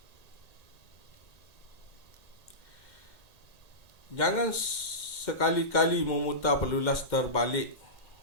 Jangan sekali-kali memutar pelulas terbalik.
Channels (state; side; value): late; right; 2.1 ms